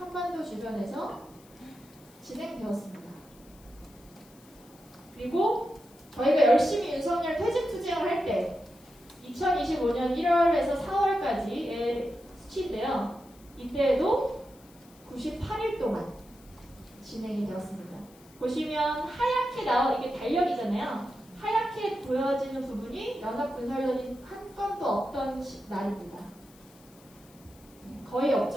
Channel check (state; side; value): noise; left; hiss, 26 dB below the sound